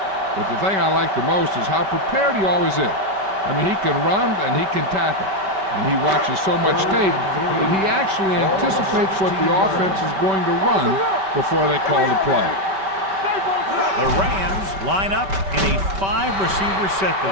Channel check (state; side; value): late; left; 5.2 ms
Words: but the thing I like the most is how prepared he always is. I mean, he can run and he can tackle, and he watches so much tape that he actually anticipates what the offense is going to run before they call the play. The Rams line up in a 5-receiver set